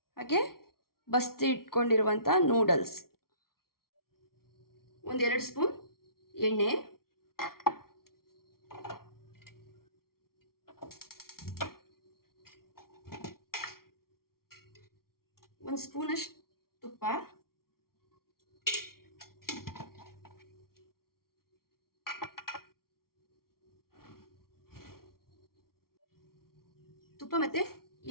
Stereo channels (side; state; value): right; late; 0.93 ms